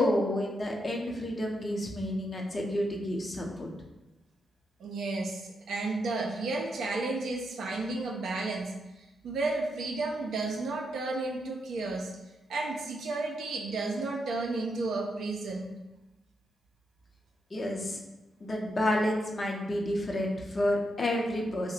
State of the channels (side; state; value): both; normal; correlation 0.81